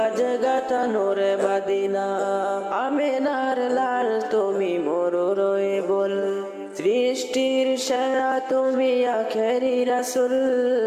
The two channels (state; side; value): identical; both; correlation 1.00